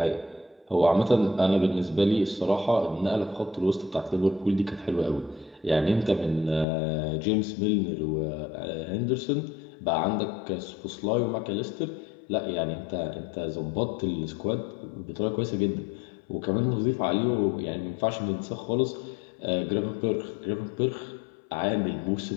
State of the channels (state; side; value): drops out; right; at 6.7 s